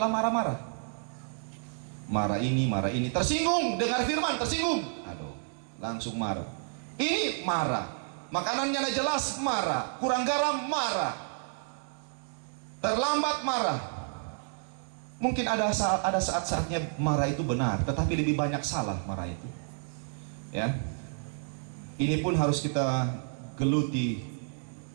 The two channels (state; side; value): silent; left; 58 dB below the other